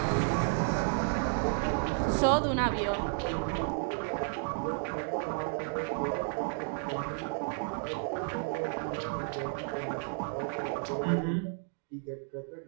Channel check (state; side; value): silent; left; 56 dB below the other